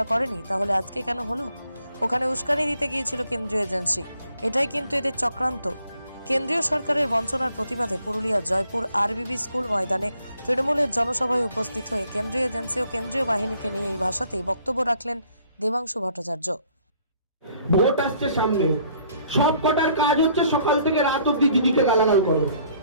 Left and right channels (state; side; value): inverted; both; correlation -0.63